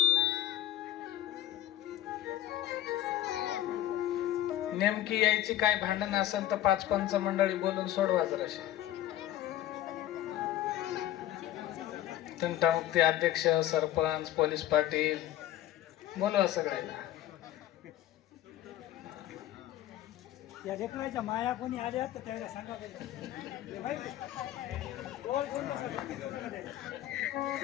नेमकी यायची काय भांडण असेल तर 5 पंच मंडळी बोलून सोडवा जराशी. तंटामुक्ती अध्यक्ष, सरपंच, पोलीस पाटील बोलवा सगळ्याला. या लेकराच्या माया कोणी आल्या तर त्याला सांगा.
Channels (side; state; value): right; quieter; 13.5 dB